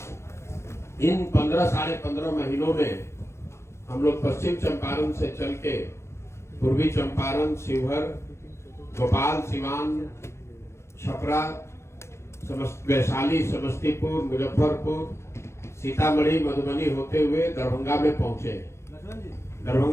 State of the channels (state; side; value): late; right; 0.13 ms